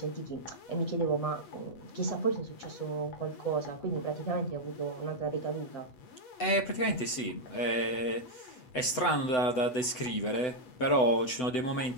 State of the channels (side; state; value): right; late; 7.9 ms